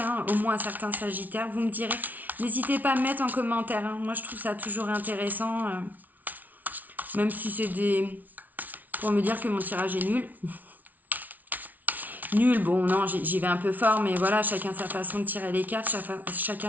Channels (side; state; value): left; late; 0.078 ms